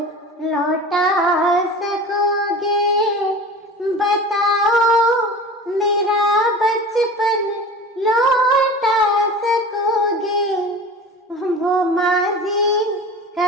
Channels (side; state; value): both; normal; correlation 0.36